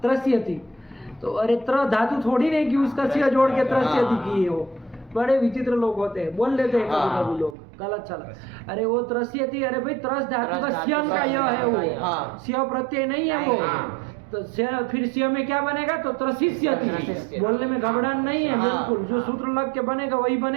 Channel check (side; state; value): left; drops out; at 7.6 s